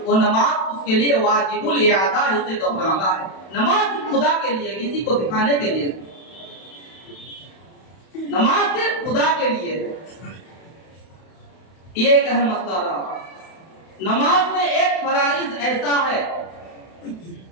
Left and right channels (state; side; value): late; right; 31 ms